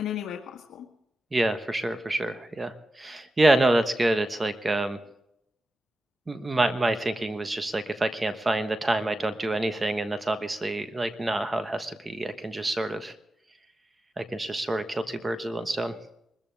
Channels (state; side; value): normal; both; correlation 0.92